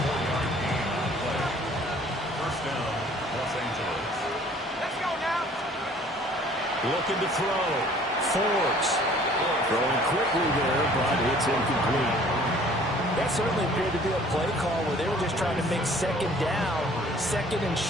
Looking to throw. Forbes. Throwing quickly there, but it's incomplete. That certainly appeared to be a play call where they were just trying to make 2nd down, 2nd and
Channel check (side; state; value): both; normal; correlation 0.54